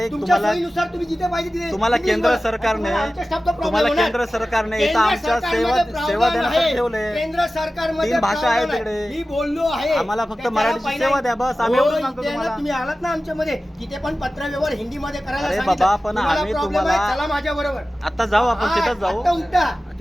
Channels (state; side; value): normal; both; correlation 0.95